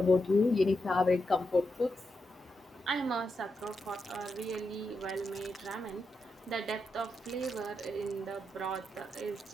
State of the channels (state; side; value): normal; both; correlation 0.85